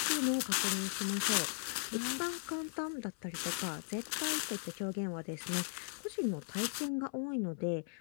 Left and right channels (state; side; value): silent; right; 53 dB below the other